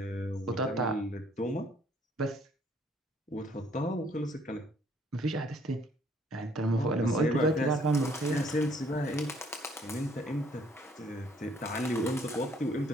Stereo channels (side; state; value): both; normal; correlation 0.63